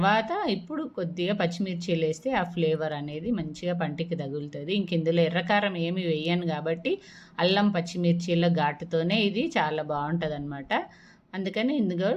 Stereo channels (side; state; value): both; identical; correlation 1.00